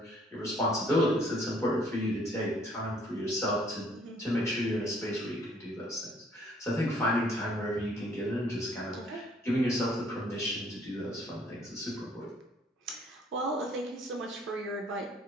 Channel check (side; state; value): both; normal; correlation 0.61